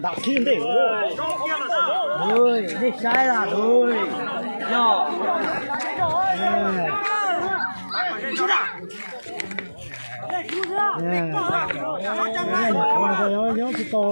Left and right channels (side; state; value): both; inverted; correlation -1.00